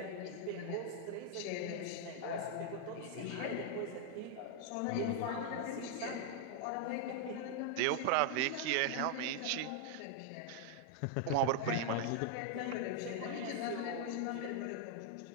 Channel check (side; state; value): both; different; correlation 0.00